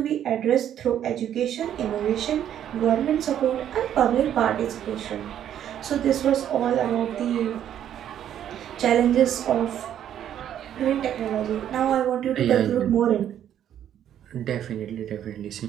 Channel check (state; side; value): quieter; left; 10.3 dB